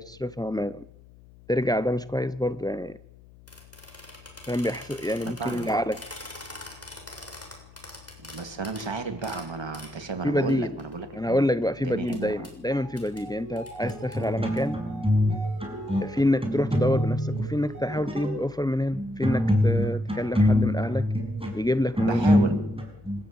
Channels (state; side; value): noise; left; hum, 24 dB below the sound